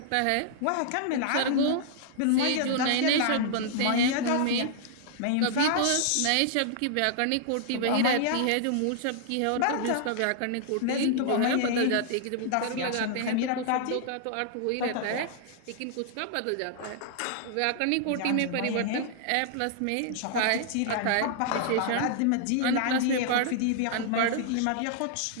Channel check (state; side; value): different; both; correlation -0.01